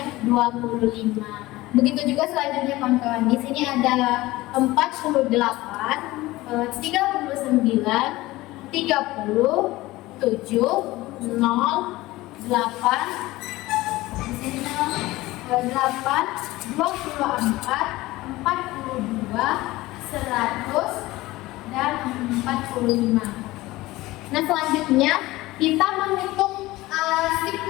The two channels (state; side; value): quieter; right; 18.7 dB